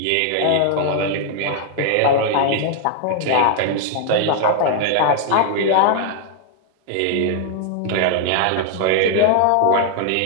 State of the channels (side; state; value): both; different; correlation 0.00